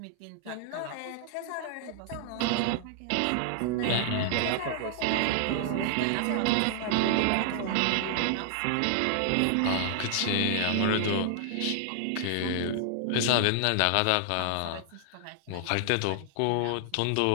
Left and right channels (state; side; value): different; both; correlation -0.01